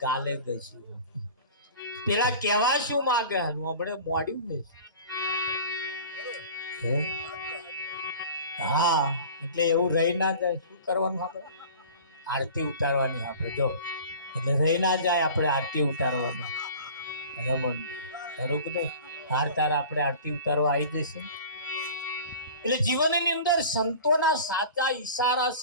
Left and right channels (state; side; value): inverted; both; correlation -0.41